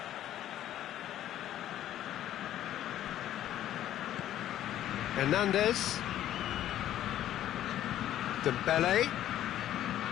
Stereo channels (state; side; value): quieter; right; 12.2 dB